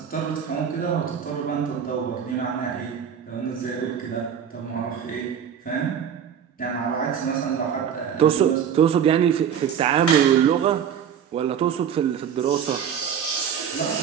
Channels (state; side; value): quieter; left; 8.3 dB